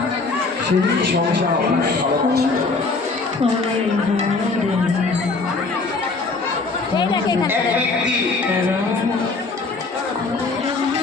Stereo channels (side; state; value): right; quieter; 3.9 dB